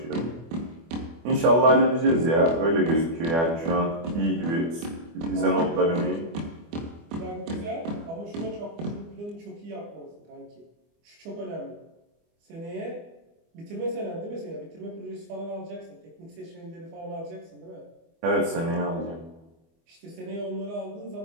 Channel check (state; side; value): late; left; 24 ms